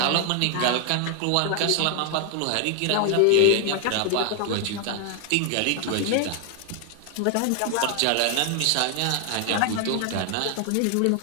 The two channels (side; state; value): both; different; correlation 0.01